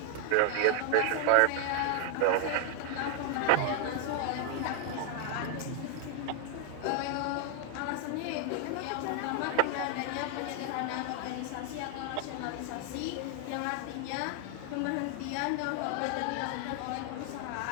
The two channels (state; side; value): different; both; correlation 0.00